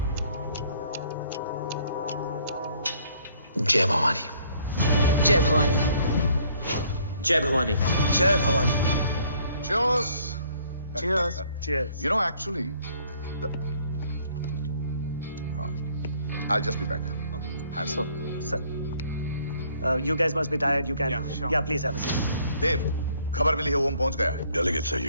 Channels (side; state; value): both; inverted; correlation -0.62